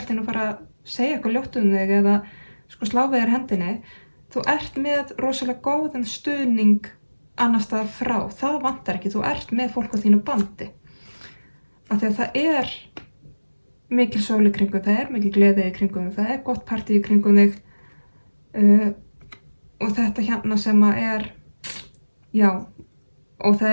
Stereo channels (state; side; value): inverted; both; correlation -1.00